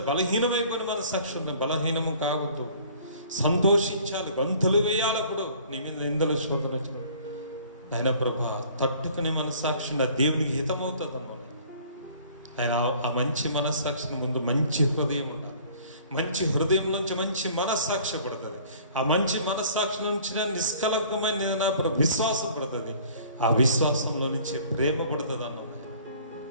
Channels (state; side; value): inverted; both; correlation -0.52